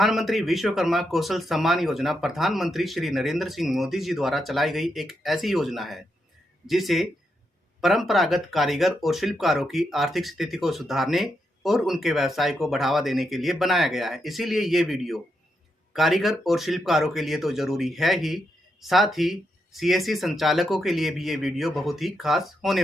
विश्वकर्मा कौशल सम्मान योजना प्रधानमंत्री श्री नरेंद्र सिंह मोदी जी द्वारा चलाई गई एक ऐसी योजना है जिसे परंपरागत कारीगर और शिल्पकारों की आर्थिक स्थिति को सुधारने और उनके व्यवसाय को बढ़ावा देने के लिए बनाया गया है। इसीलिए ये वीडियो कारीगर और शिल्पकारों के लिए तो जरूरी है ही, साथ ही सीएससी संचालकों के लिए भी ये वीडियो बहुत ही खास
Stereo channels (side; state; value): both; normal; correlation 0.82